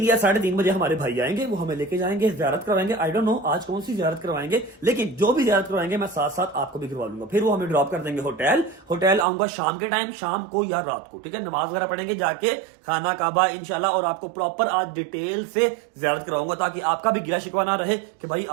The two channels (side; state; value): left; drops out; at 9.2 s